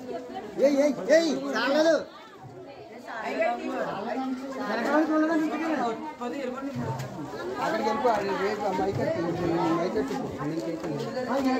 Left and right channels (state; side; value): identical; both; correlation 1.00